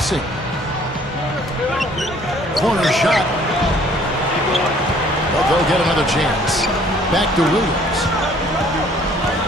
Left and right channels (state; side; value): normal; both; correlation 0.58